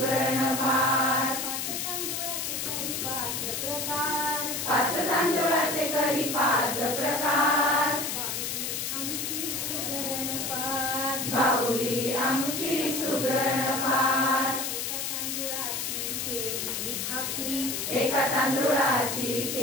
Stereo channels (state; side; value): noise; left; hiss, 2 dB below the sound